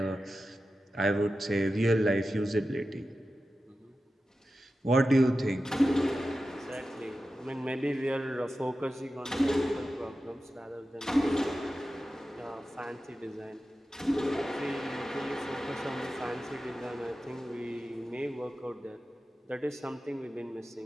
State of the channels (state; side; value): normal; both; correlation 0.93